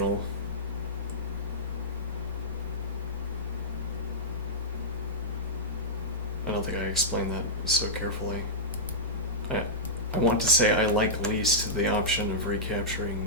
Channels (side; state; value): both; normal; correlation -0.11